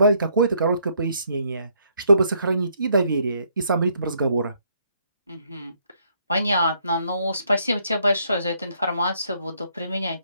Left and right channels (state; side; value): inverted; both; correlation -0.70